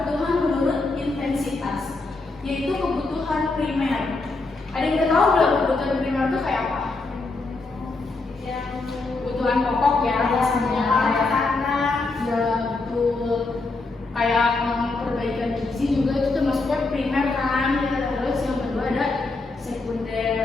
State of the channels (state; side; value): quieter; right; 3.5 dB